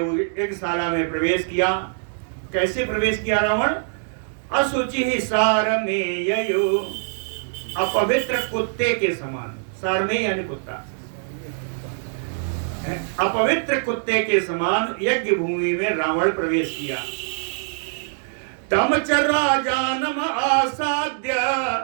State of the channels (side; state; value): left; silent; digital silence